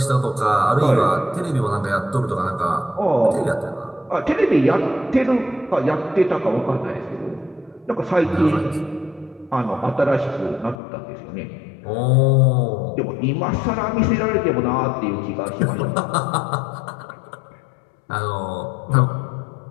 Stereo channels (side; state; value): right; drops out; at 10.8 s